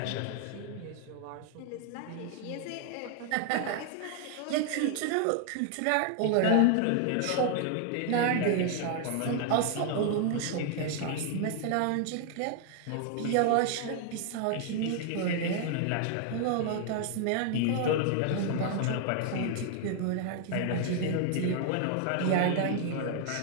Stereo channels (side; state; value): both; different; correlation 0.00